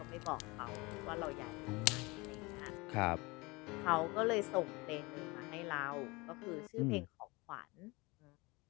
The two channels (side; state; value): right; quieter; 24.7 dB